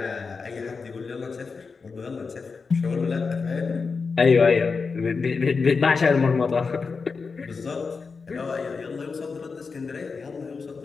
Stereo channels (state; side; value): quieter; right; 4.8 dB